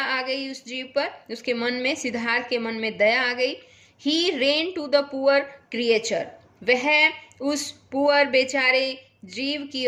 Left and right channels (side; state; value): both; identical; correlation 1.00